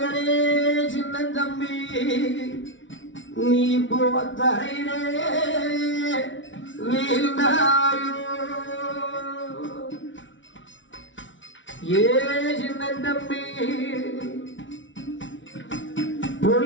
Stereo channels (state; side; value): late; right; 0.56 ms